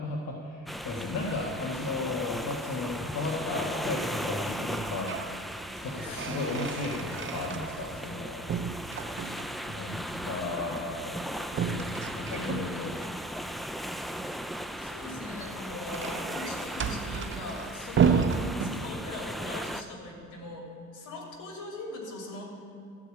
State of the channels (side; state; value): both; normal; correlation 0.41